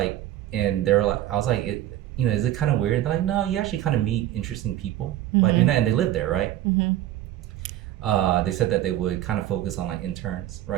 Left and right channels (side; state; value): left; quieter; 13.3 dB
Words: and they were like, I was like, is it kind of weird? They're like, no, you actually kind of meet interesting people by doing Mm-hmm. that, and they live there, right? Mm-hmm. They said that they would kind of focus on like interns,